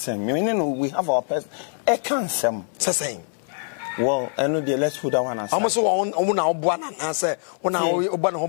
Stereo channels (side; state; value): right; silent; 62 dB below the other